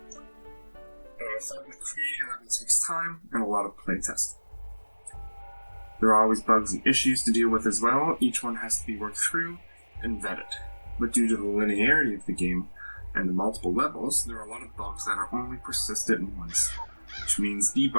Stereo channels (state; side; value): inverted; both; correlation -1.00